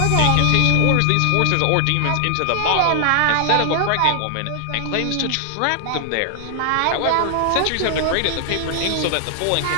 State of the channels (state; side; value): different; both; correlation 0.00